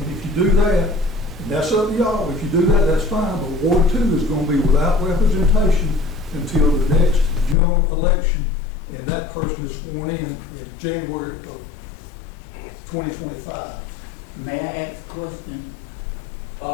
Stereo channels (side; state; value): right; drops out; at 7.6 s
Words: if you do that, and that's up to y'all, if you do that, that's fine, but Ward 2 is going to be without representation until the next general election, and that person is sworn in January of 2025. May I ask a question?